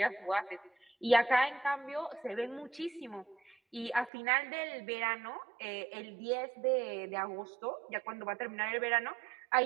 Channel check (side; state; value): left; drops out; at 4.1 s